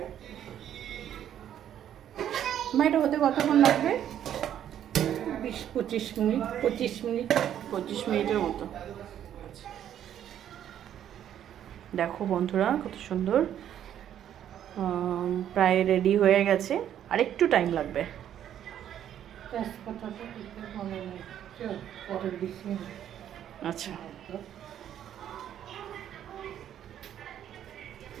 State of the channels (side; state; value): left; quieter; 10.4 dB